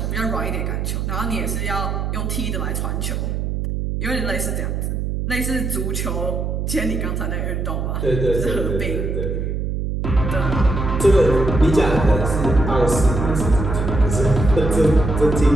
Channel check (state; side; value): noise; right; hum, 1 dB below the sound